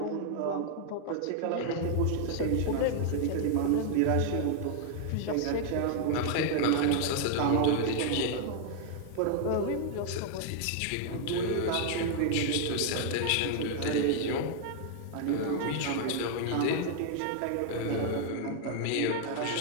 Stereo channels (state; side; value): different; both; correlation 0.00